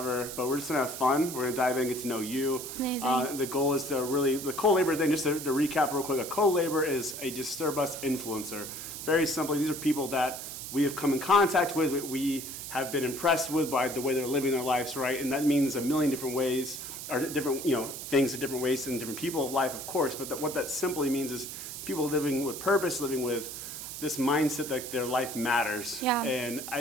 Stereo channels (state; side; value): noise; right; hiss, 8 dB below the sound